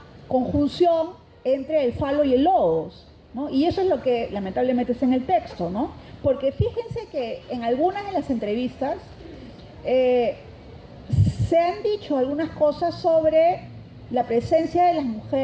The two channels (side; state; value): both; identical; correlation 1.00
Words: conjunción entre el falo y el logos, ¿no? Y eso es lo que lamentablemente está en el texto, ¿no? Porque fíjense que en algunas de las entrevistas se han dicho algunas cosas sobre la presencia de las